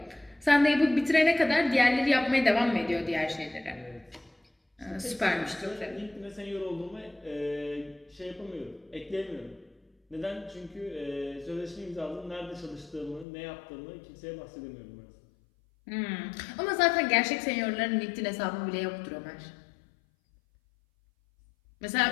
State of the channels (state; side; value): drops out; right; at 13.2 s